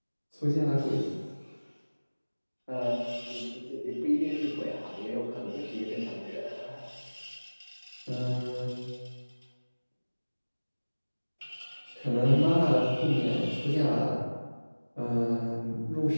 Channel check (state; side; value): inverted; both; correlation -1.00